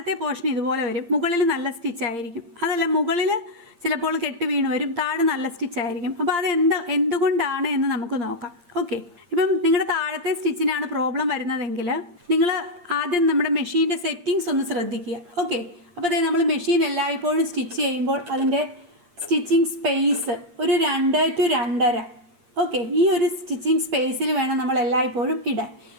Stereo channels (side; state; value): left; late; 8.6 ms